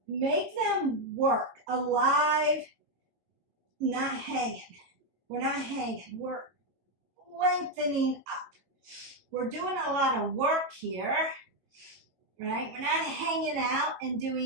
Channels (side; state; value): left; late; 22 ms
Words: make them work, alive, not hanging. We're not hanging, we're lengthening up. We're doing a lot of work here, right? We're not hanging out and